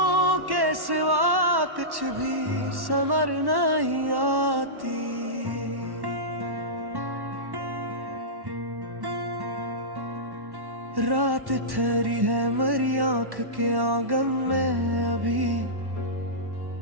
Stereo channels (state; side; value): late; left; 1.1 ms